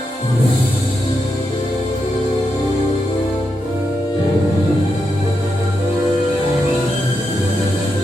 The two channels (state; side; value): normal; both; correlation 0.85